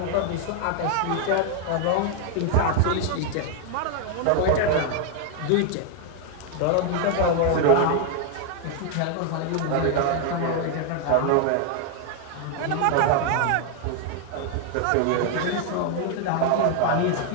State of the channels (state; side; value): different; both; correlation 0.00